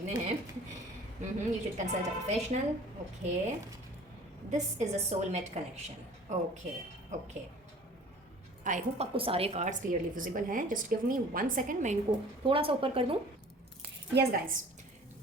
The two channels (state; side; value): normal; both; correlation 0.47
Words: हैं। You should consult a professional. Okay, this is a soulmate connection. Okay okay, I hope आपको सारे कार्ड्स क्लियरली विजिबल हैं। जस्ट गिव मी 1 सेकेंड, मैं इनको थोड़ा सा ऊपर कर दूँ। यस गाइस,